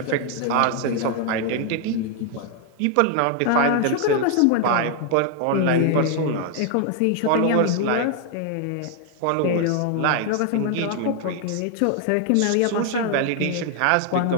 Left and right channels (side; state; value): both; different; correlation 0.00